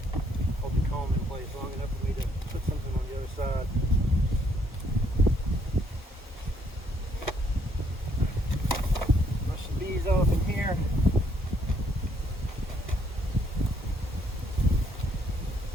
the comb in place long enough for me to put something on the other side. Brush the bees off in here.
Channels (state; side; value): normal; both; correlation 0.70